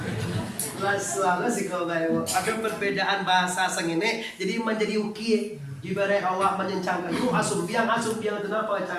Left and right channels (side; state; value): both; identical; correlation 1.00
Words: Lalu sih kau bayu. Ada perbedaan bahasa sengene. Jadi menjadi uki. Ibarat awak menyencangkan itu asum biang itu kenapa